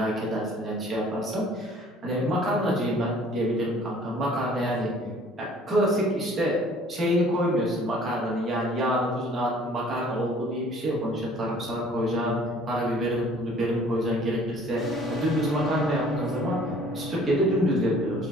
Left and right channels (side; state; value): both; normal; correlation 0.54